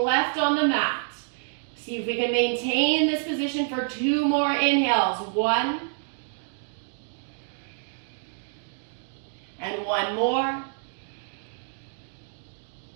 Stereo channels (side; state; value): left; silent; digital silence